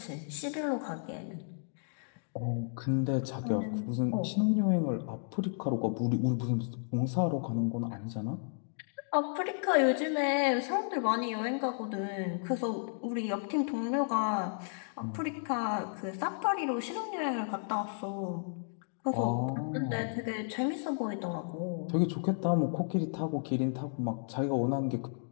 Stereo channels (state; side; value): silent; right; digital silence